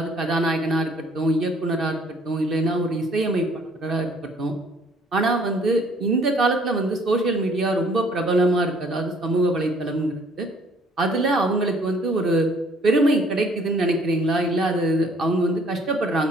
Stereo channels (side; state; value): both; normal; correlation 0.60